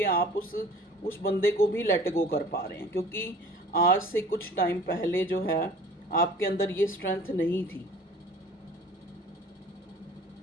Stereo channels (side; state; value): both; normal; correlation 0.47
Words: आप उस बंदे को भी लेट गो कर पा रहे हैं, क्योंकि आज से कुछ टाइम पहले जो है आपके अंदर ये स्ट्रेंथ नहीं थी।